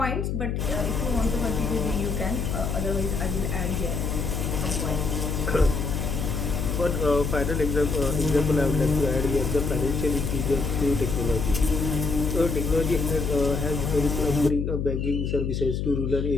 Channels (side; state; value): left; noise; hum, 1 dB below the sound